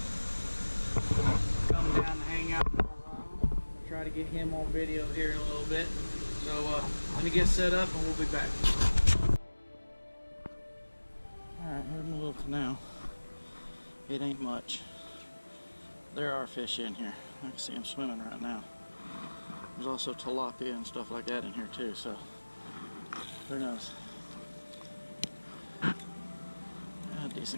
Come down and hang out for a while. I'll try to get him on video here in a little bit. So let me get set up and we'll be back. Alright, here's my little canal. It ain't much. There are fish in here. I can see them swimming right now. There's also tilapia and stuff like that in here too, so who knows. A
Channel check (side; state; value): both; inverted; correlation -1.00